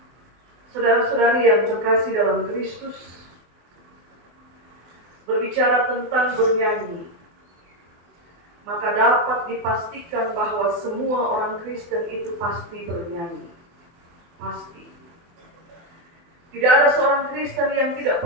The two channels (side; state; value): left; late; 24 ms